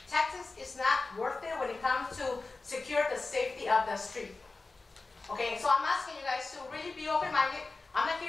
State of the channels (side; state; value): right; quieter; 3.7 dB